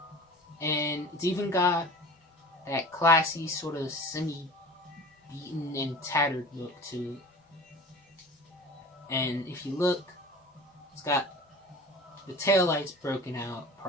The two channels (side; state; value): both; normal; correlation 0.40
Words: And it's even got that classy, sort of semi-beaten and tattered look to it. And if you look, it's got the taillights broken out